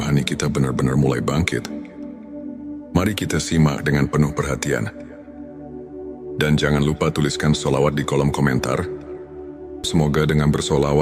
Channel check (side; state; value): both; identical; correlation 1.00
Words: kita benar-benar mulai bangkit. Mari kita simak dengan penuh perhatian. Dan jangan lupa tuliskan sholawat di kolom komentar. Semoga dengan